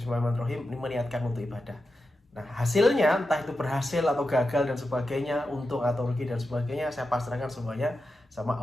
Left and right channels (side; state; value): both; normal; correlation 0.90